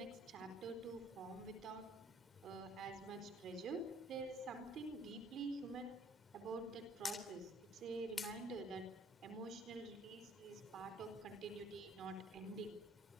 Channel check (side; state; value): both; normal; correlation 0.58